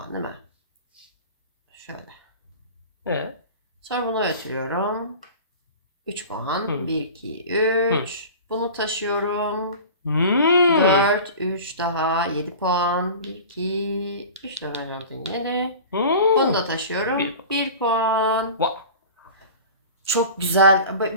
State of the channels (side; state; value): both; inverted; correlation -0.37